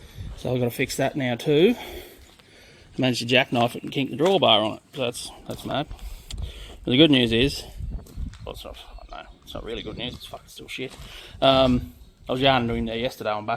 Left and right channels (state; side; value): identical; both; correlation 1.00